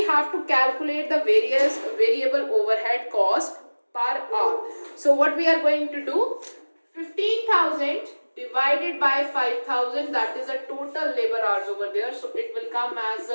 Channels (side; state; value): both; inverted; correlation -1.00